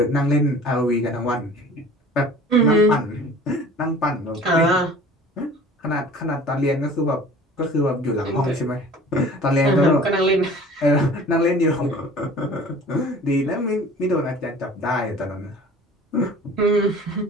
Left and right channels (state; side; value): normal; both; correlation 0.45